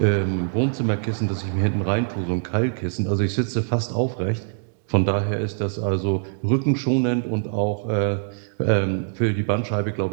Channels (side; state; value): left; silent; digital silence